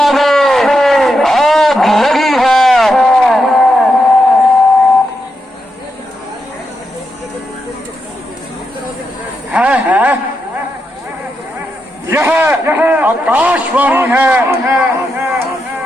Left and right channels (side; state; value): both; normal; correlation 0.85